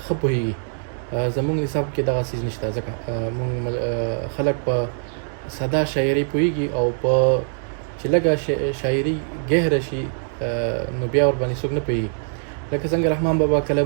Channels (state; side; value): silent; left; digital silence